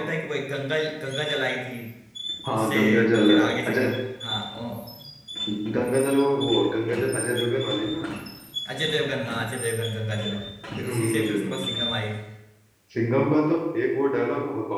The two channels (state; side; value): identical; both; correlation 1.00